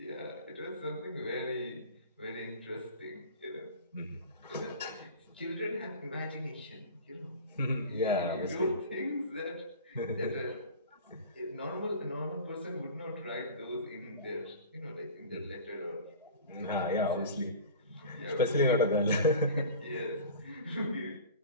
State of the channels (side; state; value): both; inverted; correlation -0.38